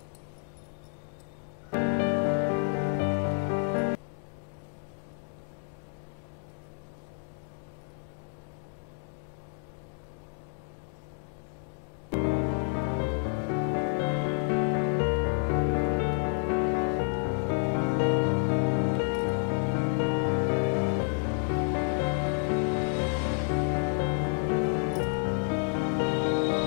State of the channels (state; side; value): silent; right; 58 dB below the other